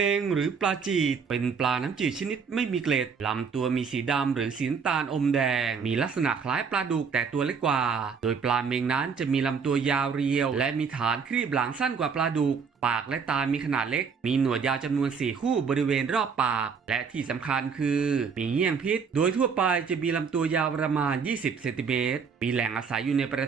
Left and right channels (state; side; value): quieter; left; 5.9 dB